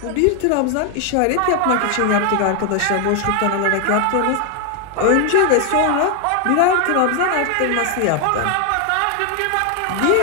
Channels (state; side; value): different; both; correlation 0.00